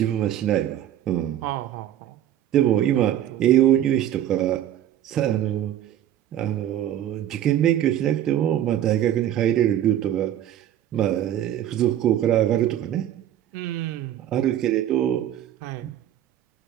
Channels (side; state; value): left; quieter; 11.6 dB